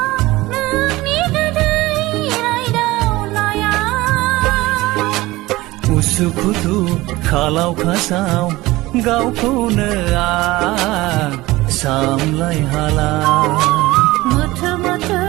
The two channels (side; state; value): left; quieter; 19.3 dB